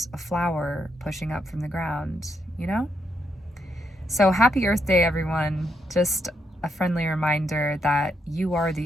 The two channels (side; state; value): both; normal; correlation 0.79